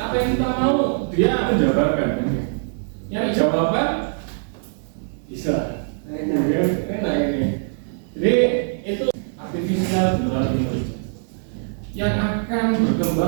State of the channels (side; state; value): left; silent; 64 dB below the other